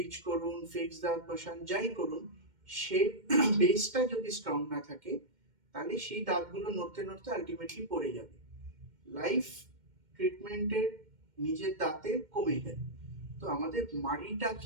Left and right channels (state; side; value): late; left; 2.1 ms